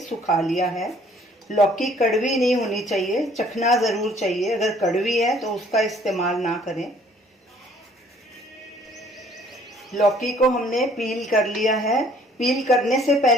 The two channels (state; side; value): normal; both; correlation 0.59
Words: सुखा लिया है। लौकी कड़वी नहीं होनी चाहिए, चखना ज़रूर चाहिए। अगर कड़वी है तो उसका इस्तेमाल ना करें। लौकी को हमने पील कर लिया है। पील करने से